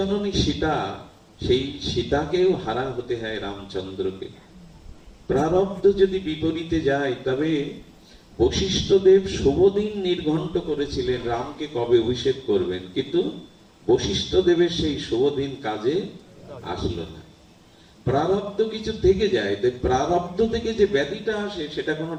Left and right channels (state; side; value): identical; both; correlation 1.00